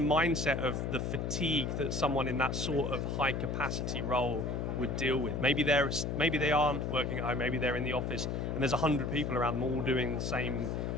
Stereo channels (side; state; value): left; noise; hum, 1 dB below the sound